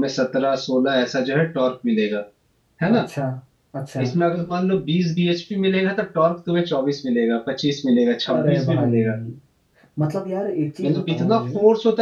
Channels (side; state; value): both; identical; correlation 1.00